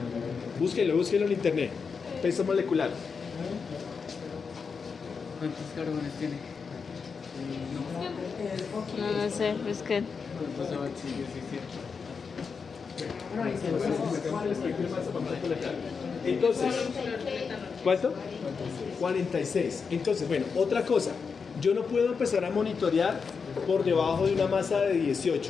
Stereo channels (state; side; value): quieter; right; 5.5 dB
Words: Búsquelo en internet. Peso molecular. ¿Cuántos carbones tiene? No sé, es que Entonces, ¿cuánto? 46. Entonces, bueno, otra cosa. Yo no puedo empezar a monitorear por debajo de una masa de